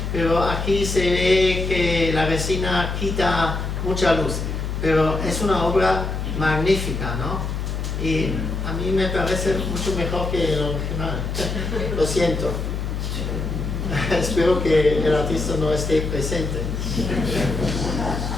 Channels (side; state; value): left; noise; hum, 3 dB below the sound